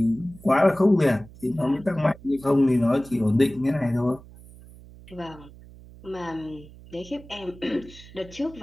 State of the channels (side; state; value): right; noise; hum, 20 dB below the sound